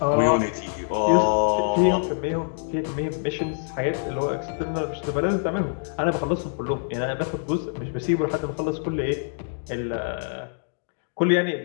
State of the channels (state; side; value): silent; right; digital silence